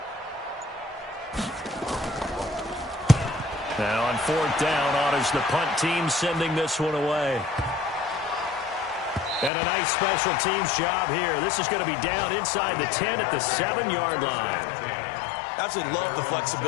Now on fourth down, honors the punt team sending this one away. And a nice special teams job here. This is going to be down inside the 10 at the 7-yard line. Absolutely love the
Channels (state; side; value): drops out; right; at 9.5 s